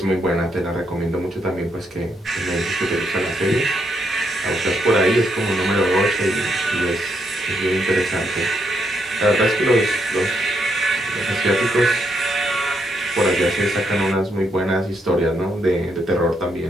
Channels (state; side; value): normal; both; correlation 0.77